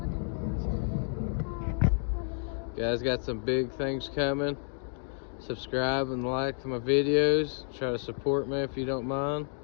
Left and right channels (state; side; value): silent; right; digital silence